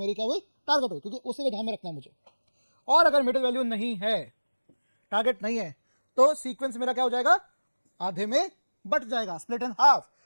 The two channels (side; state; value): both; inverted; correlation -1.00